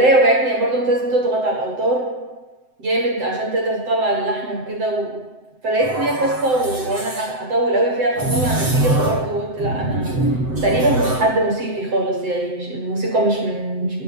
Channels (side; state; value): left; late; 7.8 ms